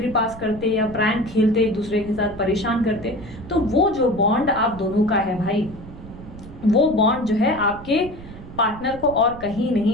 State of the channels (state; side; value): noise; right; rumble, 16 dB below the sound